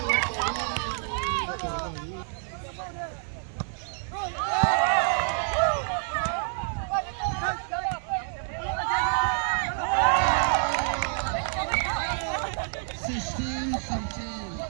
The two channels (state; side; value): silent; left; 57 dB below the other